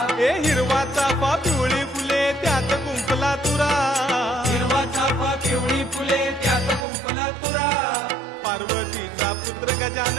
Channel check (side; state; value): left; drops out; at 6.9 s